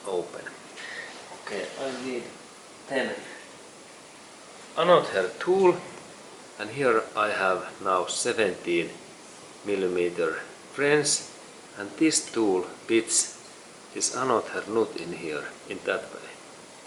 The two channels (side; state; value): both; identical; correlation 1.00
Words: open? Okay, I need then another tool, and here I have now 17mm wrench, and this tool fits this another nut in here, in that way,